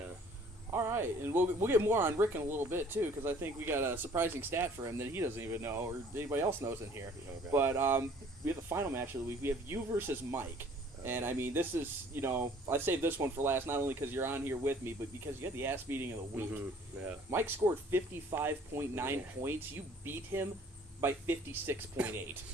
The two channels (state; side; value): normal; both; correlation 0.55